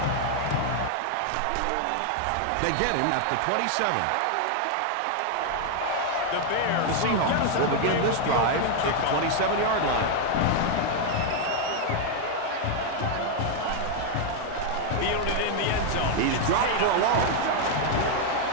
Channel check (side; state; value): both; different; correlation 0.00